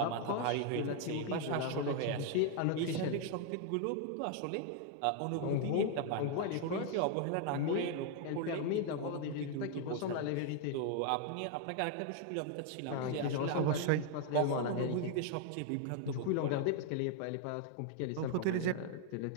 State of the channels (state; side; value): different; both; correlation 0.00